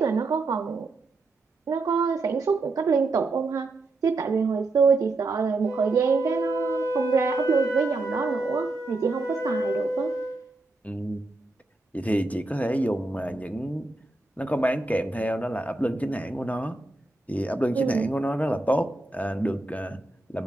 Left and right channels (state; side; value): quieter; left; 3.1 dB